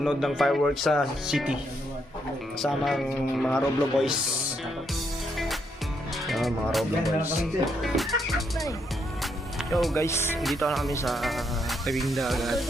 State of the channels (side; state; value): both; normal; correlation 0.76